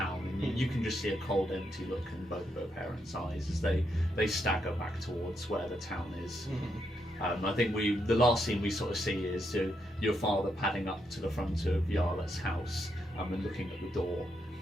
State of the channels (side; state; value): both; normal; correlation 0.80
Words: and you can just see a cold, empty look in both of her parents' eyes as they stagger back towards where the town is. I think the last scene we sort of see is your father padding up to the front of Yarlette's house and looking at the door.